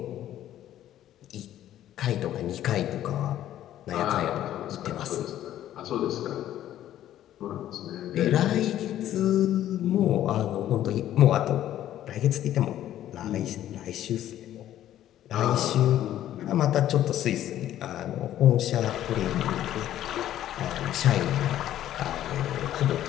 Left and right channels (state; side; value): quieter; right; 12.3 dB